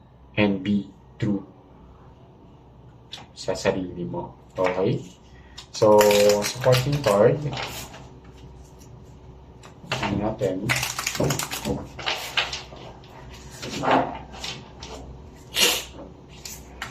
and be true sa sarili mo. Okay? So, supporting card. Tingnan natin.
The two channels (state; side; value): identical; both; correlation 1.00